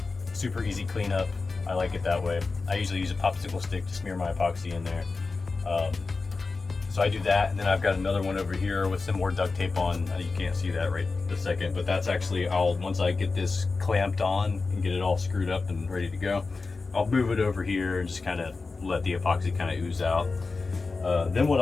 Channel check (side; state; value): right; quieter; 4.0 dB